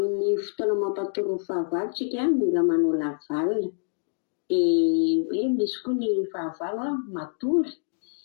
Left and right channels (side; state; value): right; silent; 61 dB below the other